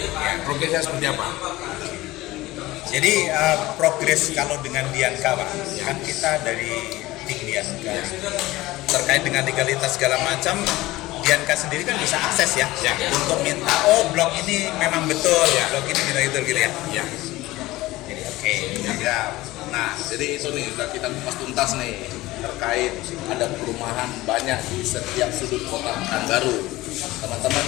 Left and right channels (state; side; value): quieter; right; 18.4 dB